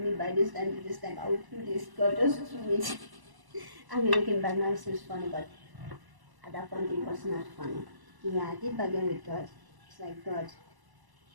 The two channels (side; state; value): left; late; 1.0 ms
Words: by this time. I will do this. God, just do it. I mean, looking back now, it seems funny, but at that point, it was not funny. Yeah, I did bargain with God. It's like, God,